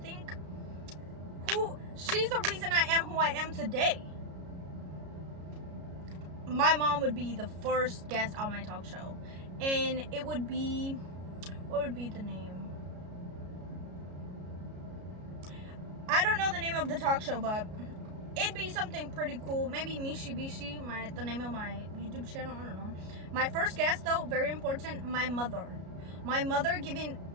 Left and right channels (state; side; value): late; left; 33 ms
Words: She's the reason I am who I am today. My mom would be the first guest on my talk show, and it would be, what would be the name? I don't know the name of the talk show, but it'd be something pretty cool. Maybe Mishi Bishi, the name of my YouTube channel. I don't know. My first guest, though, very important, my mother. My mother giving